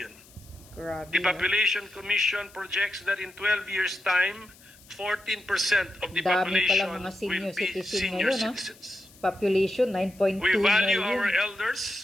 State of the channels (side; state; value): left; noise; hiss, 25 dB below the sound